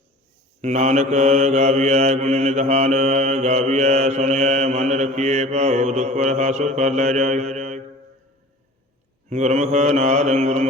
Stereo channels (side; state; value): both; normal; correlation 0.42